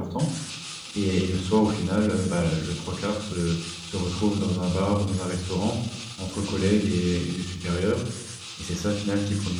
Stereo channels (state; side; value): identical; both; correlation 1.00